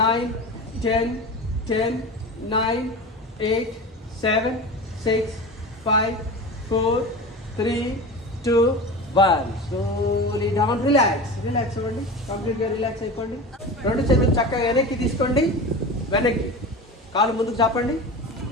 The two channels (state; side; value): normal; both; correlation 0.30